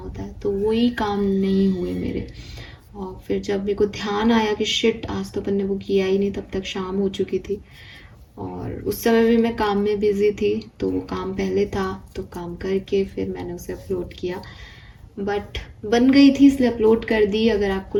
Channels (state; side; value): identical; both; correlation 1.00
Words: है, तो वही काम नहीं हुए मेरे। और फिर जब मेरे को ध्यान आया कि शिट आज तो अपन ने वो किया ही नहीं, तब तक शाम हो चुकी थी और उस समय भी मैं काम में बिजी थी, तो वो काम पहले था, तो काम करके फिर मैंने उसे अपलोड किया। बट बन गई थी इसलिए अपलोड कर दी। अगर आपको